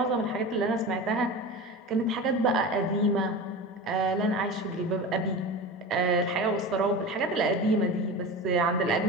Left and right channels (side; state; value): both; normal; correlation 0.29